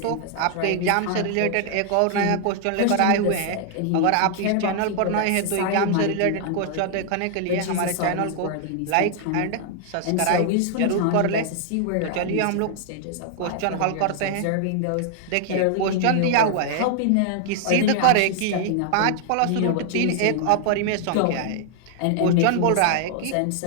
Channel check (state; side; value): different; both; correlation 0.00